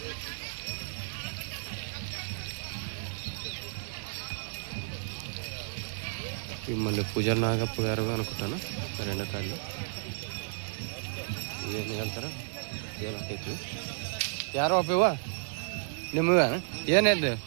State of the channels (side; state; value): left; silent; 55 dB below the other